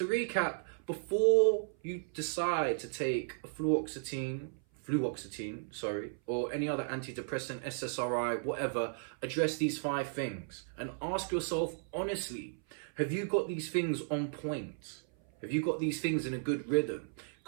recap, before you decide to take a fluoxetine, or any other antidepressant, SSRI, whatever, address these 5 things and ask yourself honestly, have you got these things on point? Have you got these things in a good rhythm?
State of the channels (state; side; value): silent; left; 55 dB below the other